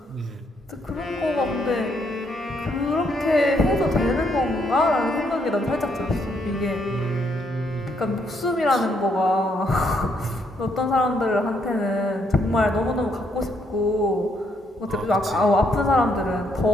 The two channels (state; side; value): normal; both; correlation 0.73